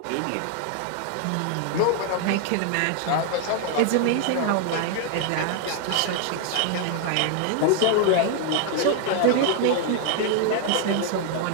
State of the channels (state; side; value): different; both; correlation 0.00